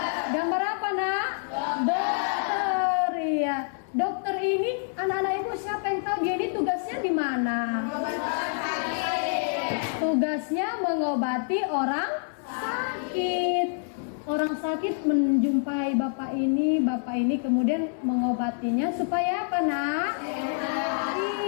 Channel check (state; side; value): silent; right; 60 dB below the other